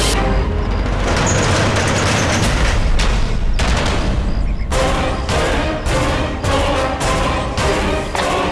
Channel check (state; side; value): identical; both; correlation 1.00